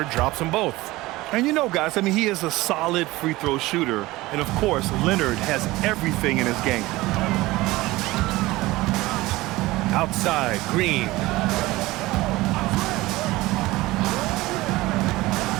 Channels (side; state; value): left; quieter; 19.3 dB